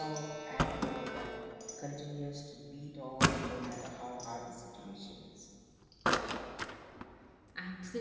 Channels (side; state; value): both; identical; correlation 1.00